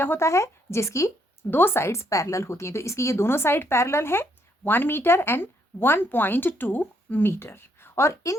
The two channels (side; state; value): both; normal; correlation 0.72